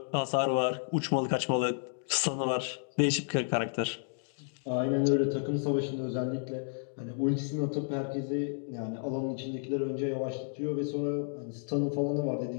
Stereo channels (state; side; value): silent; right; digital silence